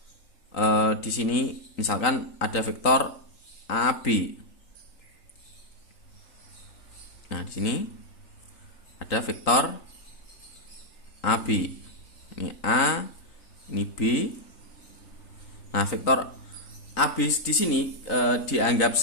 di sini misalkan ada vektor AB. Nah, di sini ada vektor AB. Ini A, ini B. Nah, vektor AB di sini dianggap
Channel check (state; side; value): late; right; 3.9 ms